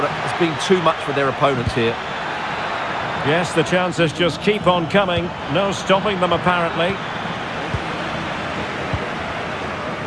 has been too much for their opponents here. Yes, the chances just keep on coming. No stopping them, apparently.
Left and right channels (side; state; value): both; identical; correlation 1.00